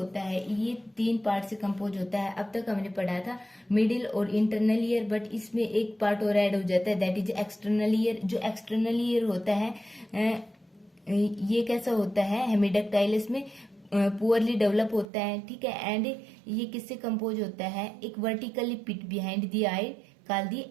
है ये 3 पार्ट से कंपोज होता है। अब तक हमने पढ़ा था मिडिल और इंटरनल ईयर, बट इसमें एक पार्ट और ऐड हो जाता है दैट इज एक्सटर्नल ईयर। जो एक्सटर्नल ईयर होता है ये कैसा होता है, हेमिडक्टाइलस में पुअरली डेवलप होता है, ठीक है। एंड ये किससे कंपोज होता है, एक vertically pit behind the eye called the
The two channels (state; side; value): drops out; left; at 15.1 s